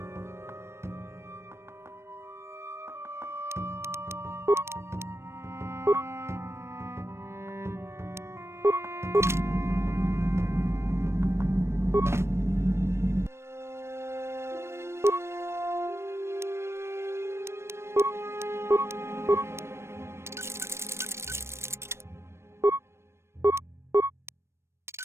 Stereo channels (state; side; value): late; left; 0.13 ms